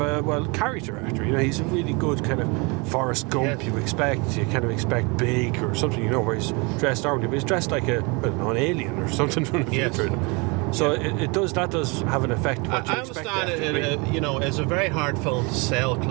a character actor. You know, he's a really good kind of Forrest Gump. Yes. You kind of expect big or something. You know, where he's dressed normally, but he's dressed like an alien or something from the future. So it does have an effect. I understand it. You know, it's a very hard film to sell.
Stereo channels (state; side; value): quieter; left; 29.2 dB